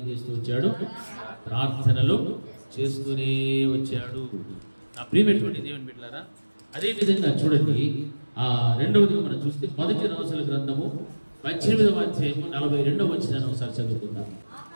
చేస్తూ వచ్చాడు? ప్రార్థనలు చేస్తూనే వచ్చాడు. నా ప్రియమైనటువంటి దేవుని బిడ్డలారా, అదేవిధంగా చూడండి ఆ రెండవది మనం చూస్తే 1 రాజుల గ్రంథము 18వ అధ్యాయము 42వ వచనాన్ని ఒకసారి చదువుకుందాం.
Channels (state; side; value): inverted; both; correlation -1.00